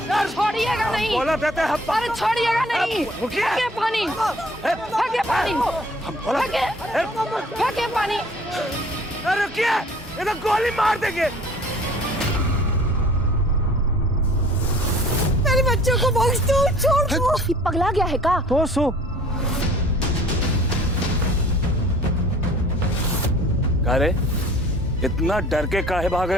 छोड़िएगा नहीं। बोला देते हैं, अरे छोड़िएगा नहीं, रुकिए। फेंके पानी, फेंके पानी, हम बोला फेंके पानी। अरे रुकिए, ये तो गोली मार देंगे। मेरे बच्चों को बख्श दो, छोड़ दो। ये पगला गया है का? तो सो अरे इतना डर के काहे भाग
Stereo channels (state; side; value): normal; both; correlation 0.51